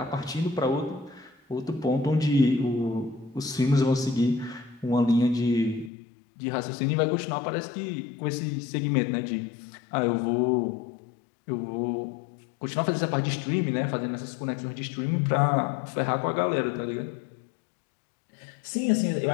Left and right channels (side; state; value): right; drops out; at 5.9 s